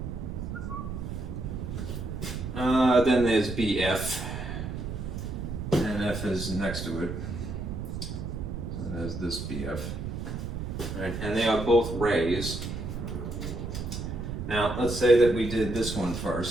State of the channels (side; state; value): right; noise; rumble, 5 dB below the sound